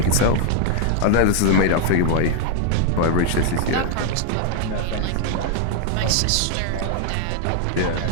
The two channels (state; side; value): different; both; correlation 0.00